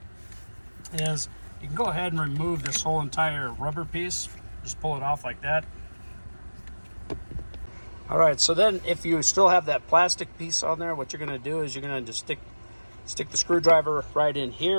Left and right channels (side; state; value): both; inverted; correlation -1.00